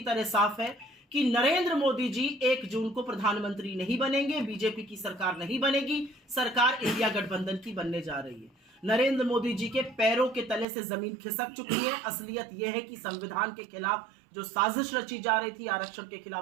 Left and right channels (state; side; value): drops out; left; at 10.7 s